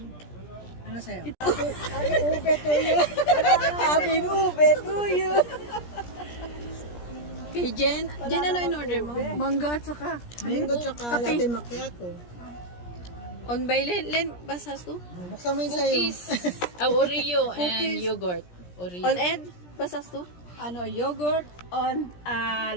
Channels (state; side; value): late; right; 17 ms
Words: Ano sa'yo? Aming ube tuyo. Kay Jen, ano in order mo? Mangga at saka. Mango tsaka latte macchiato. On by Len, basas to? Buksan mo yung sa'yo. Oreo and yogurt. Oreo. On Ed, basas to? Ano, yogurt on